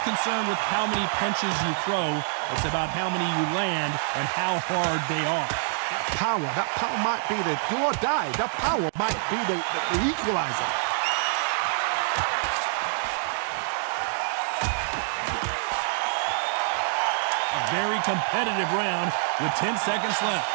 concerned with how many punches you throw. It's about how many you land and how hard they are. That power might be the do or die. That power might be the equalizer. A very competitive round with 10 seconds left.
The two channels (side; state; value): left; silent; digital silence